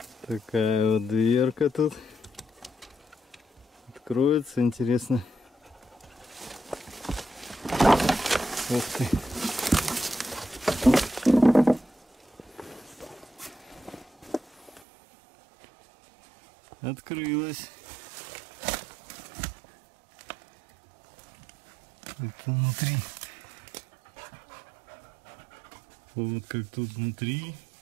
Такая вот дверка тут. Откроется, интересно. Ух ты. Открылась. Это внутри. Вот как тут внутри.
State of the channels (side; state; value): left; drops out; at 14.8 s